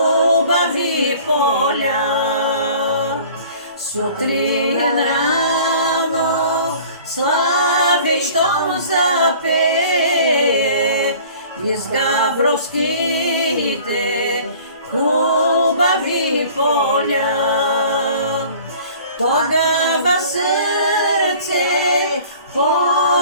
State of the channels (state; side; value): inverted; both; correlation -0.48